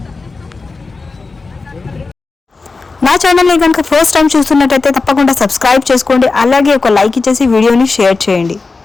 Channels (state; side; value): quieter; right; 4.0 dB